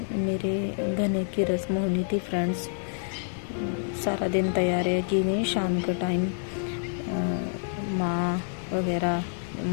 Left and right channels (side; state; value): right; silent; 60 dB below the other